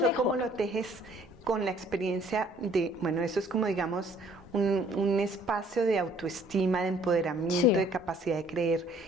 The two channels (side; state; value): both; normal; correlation 0.59